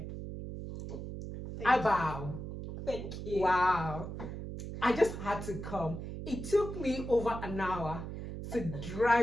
I bow. Thank you. Wow. I just had to come. It took me over an hour to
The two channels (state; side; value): noise; right; hum, 8 dB below the sound